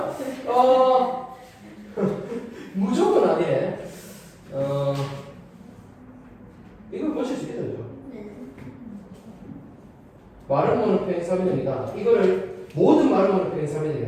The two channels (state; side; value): identical; both; correlation 1.00